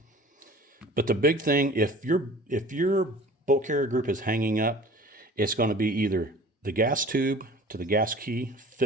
But the big thing, if your bolt carrier group is hanging up, it's going to be either the gas tube to the gas key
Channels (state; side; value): normal; both; correlation 0.45